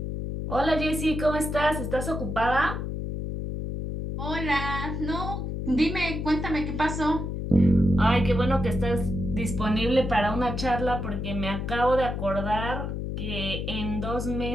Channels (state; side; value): noise; left; hum, 4 dB below the sound